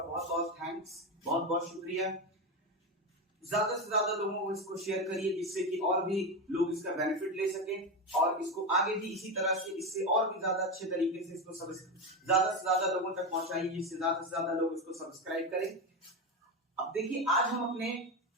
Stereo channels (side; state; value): both; normal; correlation 0.15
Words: बहुत बहुत थैंक्स, बहुत बहुत शुक्रिया। ज्यादा से ज्यादा लोगों को इसको शेयर करिए जिससे कि और भी लोग इसका बेनिफिट ले सकें और इसको आगे भी इसी तरह से इससे और भी ज्यादा अच्छे तरीके से इसको ज्यादा से ज्यादा लोगों तक पहुंचाइए जिससे ज्यादा से ज्यादा लोग इसको सब्सक्राइब करें। अब देखिए, आज हम अपने